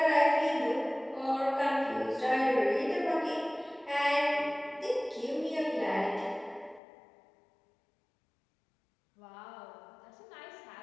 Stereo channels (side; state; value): right; drops out; at 6.8 s